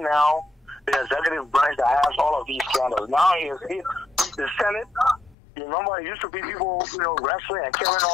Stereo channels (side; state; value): right; drops out; at 5.4 s